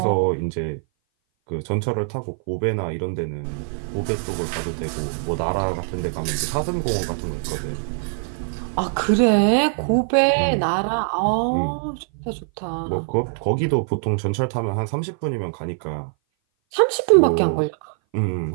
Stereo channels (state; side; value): silent; left; 58 dB below the other